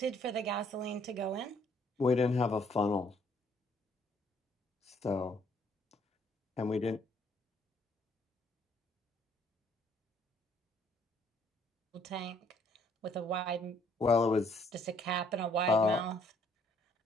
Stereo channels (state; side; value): normal; both; correlation 0.65